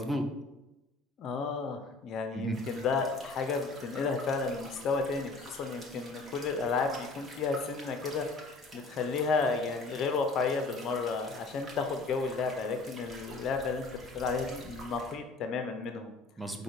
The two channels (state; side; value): quieter; right; 3.6 dB